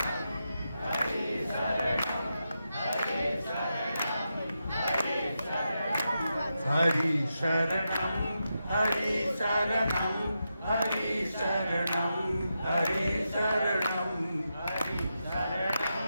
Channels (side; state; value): both; inverted; correlation -0.87